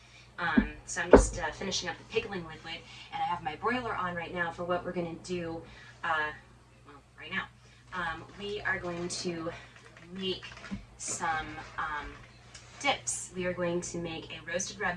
So I'm just finishing up the pickling liquid, and I have my broiler on right now for what we're going to do. Well, right now, we are going to make some dips. We are going to make a roasted red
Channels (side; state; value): both; identical; correlation 1.00